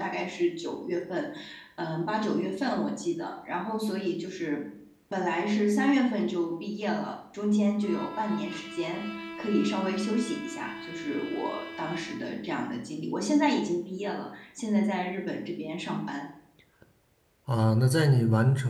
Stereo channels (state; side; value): identical; both; correlation 1.00